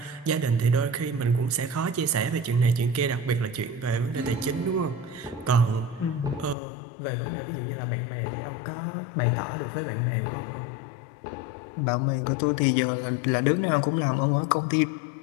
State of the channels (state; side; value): drops out; right; at 6.6 s